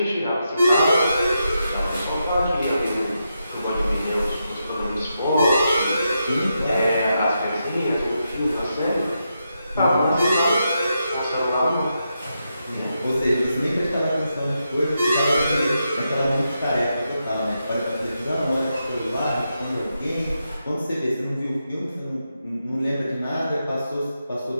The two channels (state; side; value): inverted; both; correlation -0.85